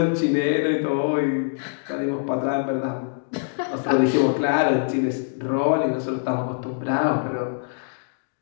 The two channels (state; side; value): silent; right; digital silence